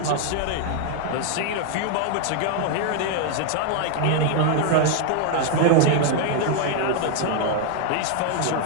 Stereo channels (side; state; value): both; different; correlation 0.00